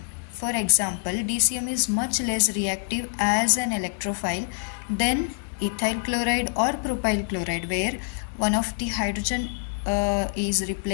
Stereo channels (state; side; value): silent; right; digital silence